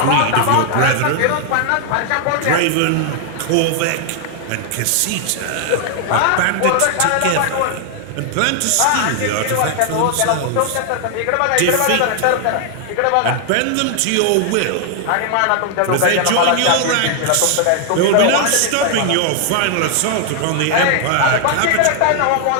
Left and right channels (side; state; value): both; different; correlation 0.00